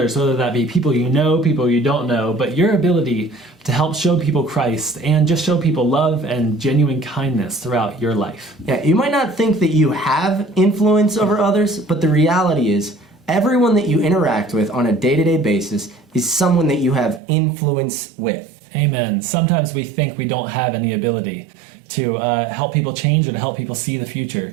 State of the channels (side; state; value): left; drops out; at 17.2 s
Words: whether that be people you know, people you don't know, but your ability to help show people Christ and just show people love and genuine kindness throughout your life. Yeah, you might not think that you have influence over others, but the reality is everyone that you interact with on a day-to-day basis is someone that you have influence with. Amen. Sometimes we think we don't have any ability to help people change or to help people see the